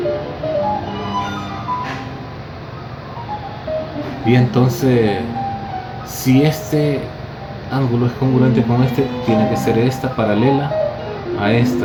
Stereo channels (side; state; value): both; identical; correlation 1.00